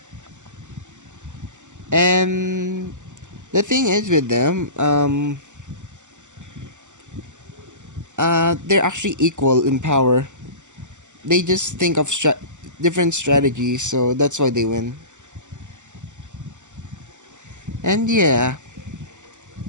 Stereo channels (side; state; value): left; late; 0.85 ms